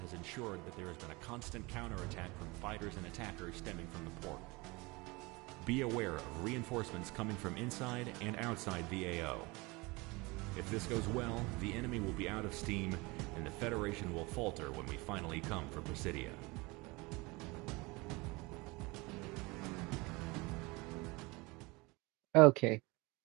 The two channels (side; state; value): left; quieter; 24.7 dB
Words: ensured that there has been a constant counterattack from fighters and attackers stemming from the port. Be aware of reinforcements coming from inside and outside the AO. If this goes well, the enemy will be out of steam, and the Federation will falter when we finally come for Presidia. Okay.